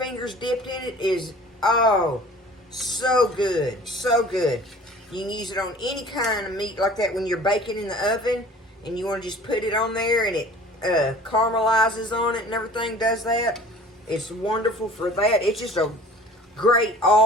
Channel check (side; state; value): both; normal; correlation 0.46